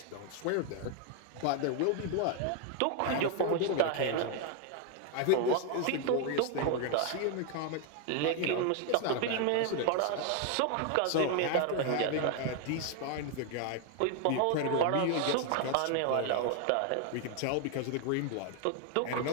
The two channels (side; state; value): both; different; correlation 0.01